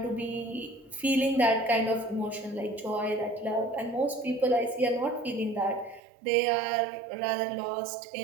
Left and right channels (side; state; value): left; drops out; at 6.0 s